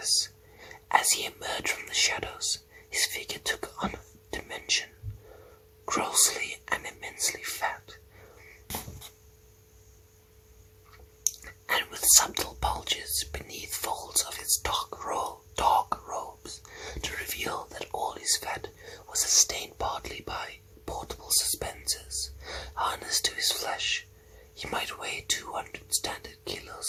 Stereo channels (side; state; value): both; identical; correlation 1.00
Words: As he emerged from the shadows, his figure took on a dimension, grossly and immensely fat, and with subtle bulges beneath folds of his dark robes to reveal that all his fat was sustained partly by portable suspensors harnessed to his flesh. He might weigh 200 standard